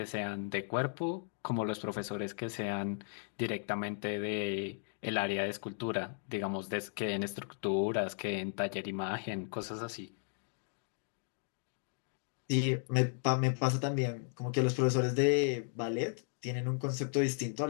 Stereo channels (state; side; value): silent; right; digital silence